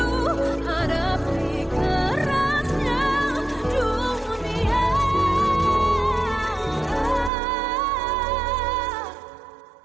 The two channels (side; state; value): left; drops out; at 7.3 s